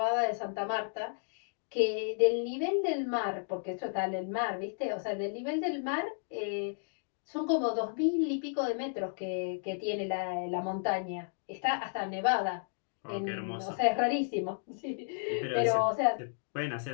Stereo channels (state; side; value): silent; right; digital silence